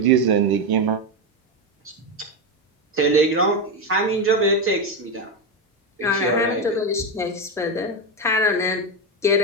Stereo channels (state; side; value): normal; both; correlation 0.11